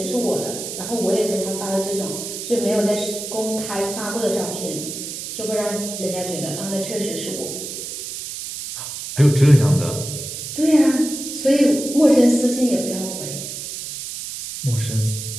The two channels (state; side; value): noise; right; hiss, 8 dB below the sound